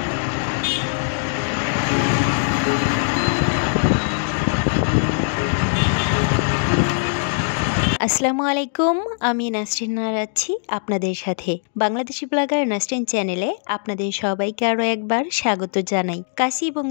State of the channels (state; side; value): silent; right; digital silence